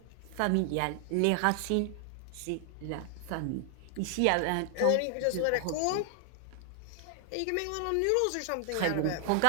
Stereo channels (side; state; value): both; different; correlation 0.00